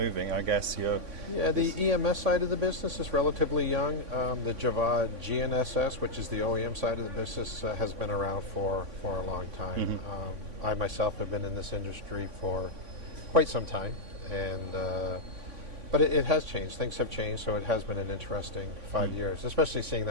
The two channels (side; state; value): left; late; 3.5 ms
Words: I guess you're... Yeah, the EMS side of the business is relatively young. The JAVAD GNSS, which is the OEM side of the business, has been around for a long time. I myself have been in this industry for quite some time, and but it has changed. Things have changed, so it has been an interesting 5 years, especially seeing